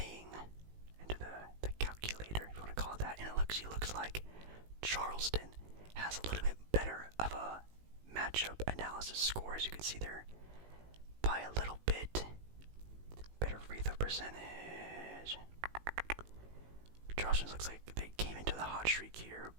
Into the calculator, if you want to call it that. And it looks like Charleston has a little bit better of a matchup analysis score, as you can see there, by a little bit. Better free throw percentage. Charleston looks like they came into the hot streak here,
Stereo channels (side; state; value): left; late; 18 ms